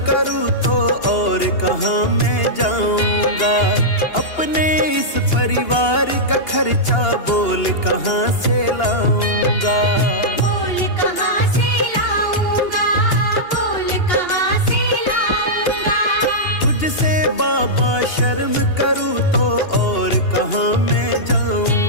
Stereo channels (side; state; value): right; late; 2.8 ms